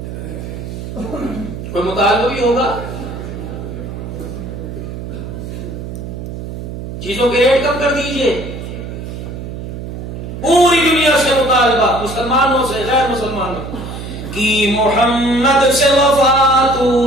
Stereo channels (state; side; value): noise; right; hum, 8 dB below the sound